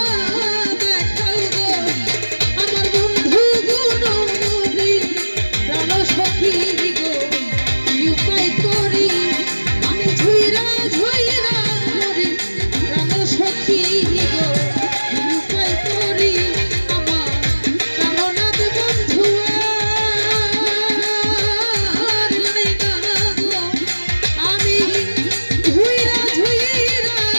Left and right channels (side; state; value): both; inverted; correlation -1.00